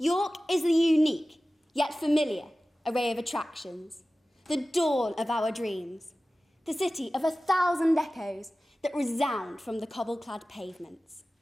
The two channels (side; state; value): both; normal; correlation 0.96